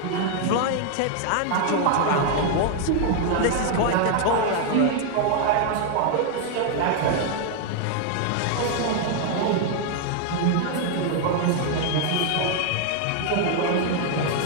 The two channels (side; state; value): both; different; correlation 0.00